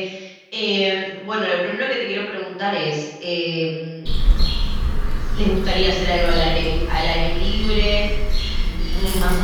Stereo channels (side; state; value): both; identical; correlation 1.00